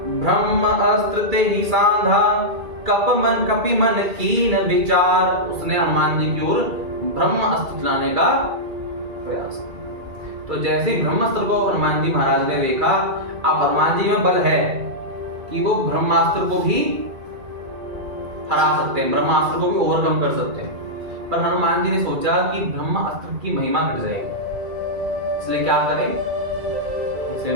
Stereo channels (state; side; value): late; left; 2.3 ms